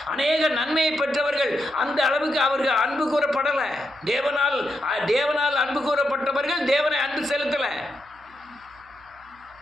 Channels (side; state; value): right; noise; hum, 28 dB below the sound